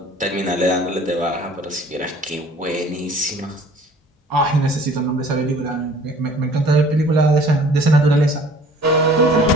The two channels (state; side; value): normal; both; correlation 0.51